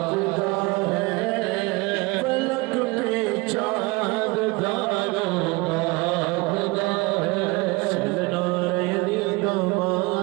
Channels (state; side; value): quieter; left; 24.7 dB